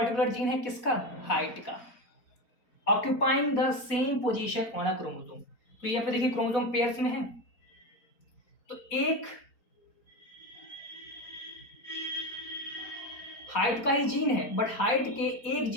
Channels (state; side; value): late; right; 4.4 ms